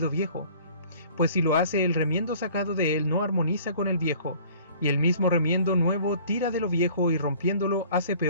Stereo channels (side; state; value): both; inverted; correlation -0.51